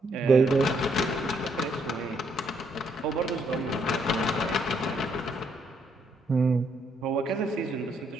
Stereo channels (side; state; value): both; normal; correlation 0.72